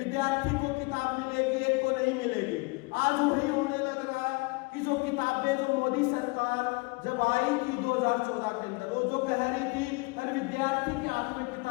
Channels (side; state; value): right; quieter; 27.8 dB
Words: को किताब मिलेगी, एक को नहीं मिलेगी। आज वही होने लग रहा है कि जो किताबें जो मोदी सरकार जब आई थी 2014 के अंदर, वो जो कह रही थी हर विद्यार्थी के हाथ में